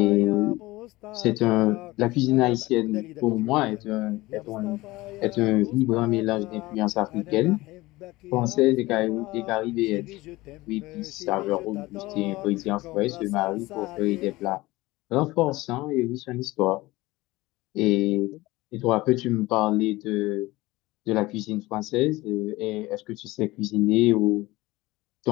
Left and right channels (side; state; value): right; quieter; 19.8 dB